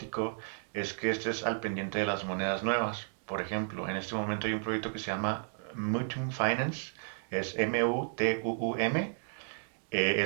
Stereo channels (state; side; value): silent; left; digital silence